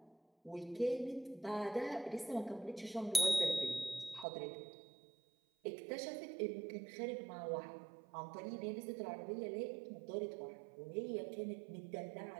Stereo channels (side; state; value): left; drops out; at 4.2 s